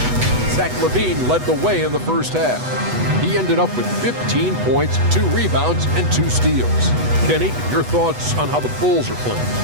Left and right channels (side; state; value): left; late; 8.1 ms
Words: Zach LaVine led the way in the first half. He ended up with 15 points, 2 rebounds, and 2 steals. Kenny, your thoughts on how the Bulls are playing?